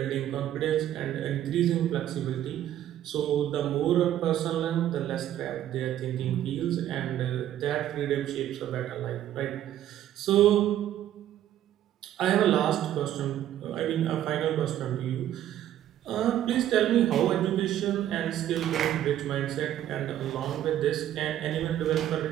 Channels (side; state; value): left; quieter; 11.9 dB